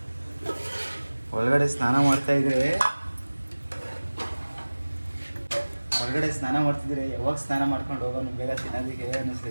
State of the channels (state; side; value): inverted; both; correlation -1.00